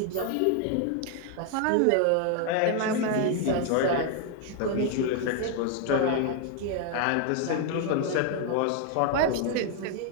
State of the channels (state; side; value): different; both; correlation 0.00